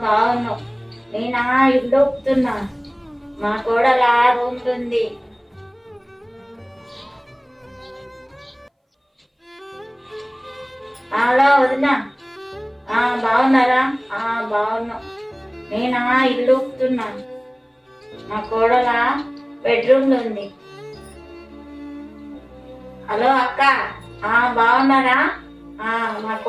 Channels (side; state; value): both; identical; correlation 1.00